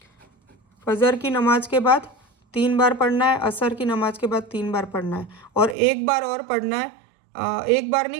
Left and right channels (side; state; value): left; drops out; at 5.8 s